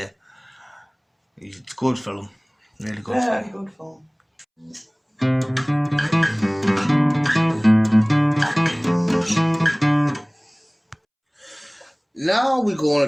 It's a good film. Really good film. Very good film. Now we're going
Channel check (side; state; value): both; identical; correlation 1.00